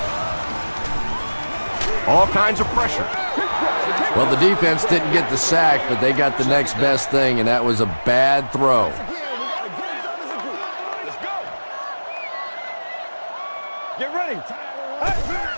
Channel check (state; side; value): inverted; both; correlation -1.00